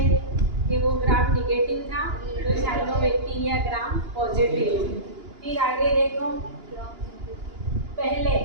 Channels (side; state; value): left; late; 2.9 ms